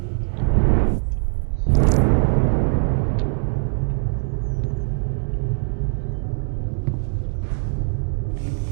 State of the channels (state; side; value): silent; left; digital silence